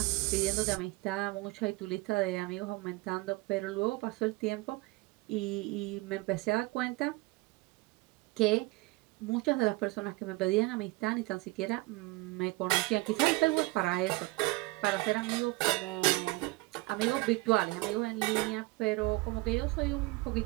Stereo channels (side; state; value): left; quieter; 22.6 dB